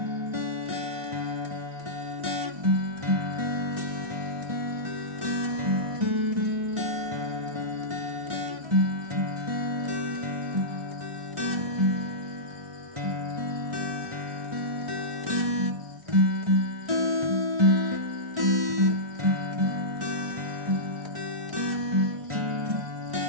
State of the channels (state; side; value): late; left; 1.4 ms